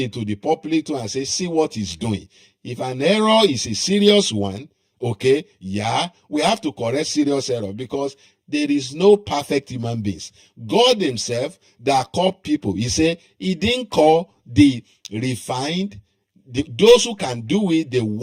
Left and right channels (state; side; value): identical; both; correlation 1.00